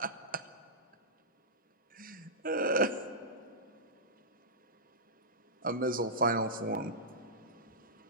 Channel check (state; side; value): normal; both; correlation -0.14